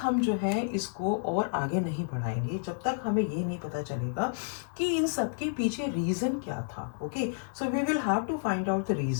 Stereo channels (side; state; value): right; silent; digital silence